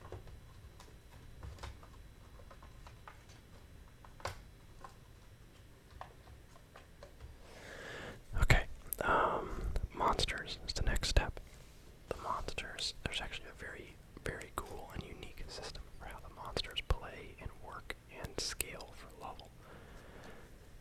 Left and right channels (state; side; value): identical; both; correlation 1.00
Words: Okay, monsters is the next step. The monsters, there's actually a very, very cool and unique system for how the monsters play and work and scale for level.